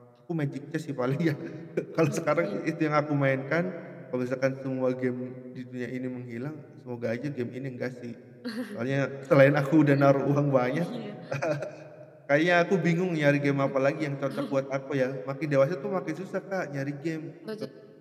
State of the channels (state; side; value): identical; both; correlation 1.00